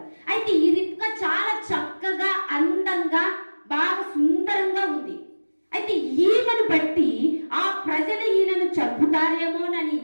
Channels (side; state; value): both; inverted; correlation -1.00